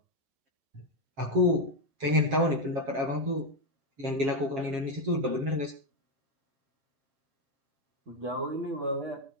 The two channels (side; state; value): left; late; 7.4 ms